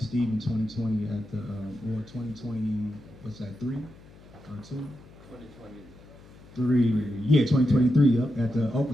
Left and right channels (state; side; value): noise; left; hum, 22 dB below the sound